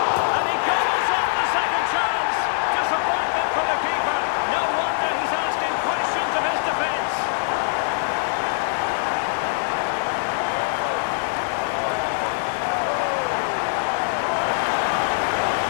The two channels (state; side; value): silent; right; digital silence